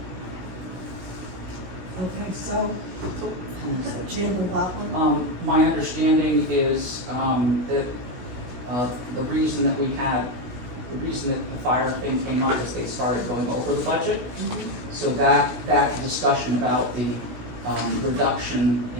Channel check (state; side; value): late; left; 16 ms